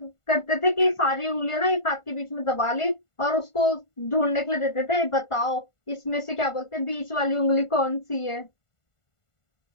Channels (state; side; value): late; right; 1.4 ms